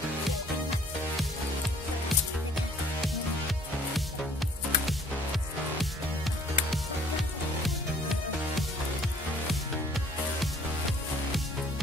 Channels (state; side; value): normal; both; correlation 0.57